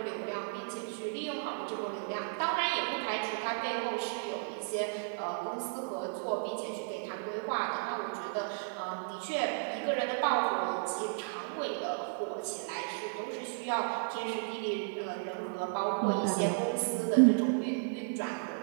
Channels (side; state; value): left; silent; 55 dB below the other